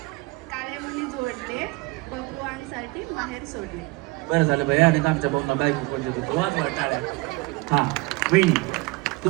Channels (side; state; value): left; quieter; 23.6 dB